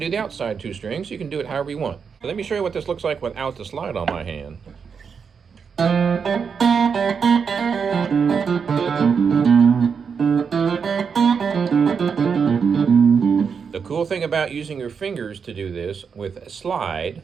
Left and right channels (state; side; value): quieter; left; 6.2 dB